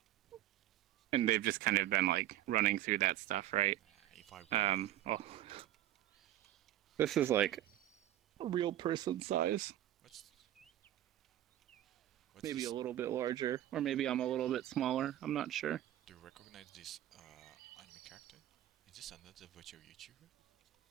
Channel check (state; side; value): quieter; left; 13.2 dB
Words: And they've just kind of been like running through that stuff, right? This is like a real person size. Maybe a little bit larger, or maybe I'm a little bit smaller. I'm not sure. Do you recognize this anime character? Is this another virtual YouTuber?